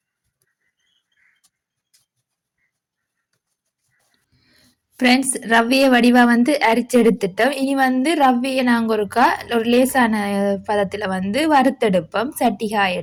ஃப்ரெண்ட்ஸ், ரவையை வடிவாக வந்து அரிச்செடுத்துட்டோம். இனி வந்து ரவையை நாங்கள் ஒரு லேசான பதத்தில் வந்து வறுத்தெடுப்போம். சட்டி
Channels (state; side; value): identical; both; correlation 1.00